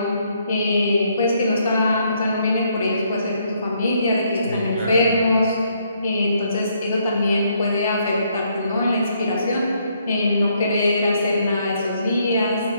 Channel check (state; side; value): inverted; both; correlation -0.71